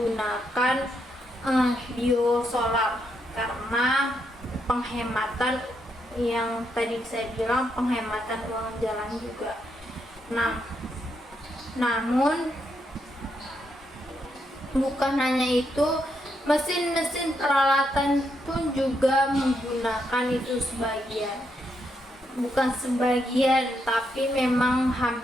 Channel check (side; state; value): both; normal; correlation 0.79